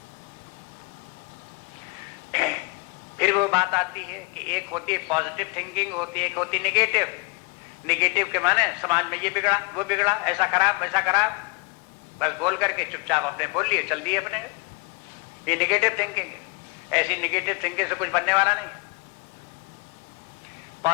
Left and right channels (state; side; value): quieter; right; 28.2 dB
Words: फिर वो बात आती है कि एक होती है पॉजिटिव थिंकिंग, होती है एक होती है निगेटिव। निगेटिव के माने समाज में ये बिगड़ा, वो बिगड़ा, ऐसा खराब, वैसा खराब, बस बोल करके चुपचाप अपने बोल लिए, चल दिए अपने। ये निगेटिव थिंकिंग है। ऐसी निगेटिव थिंकिंग से कुछ बनने वाला नहीं।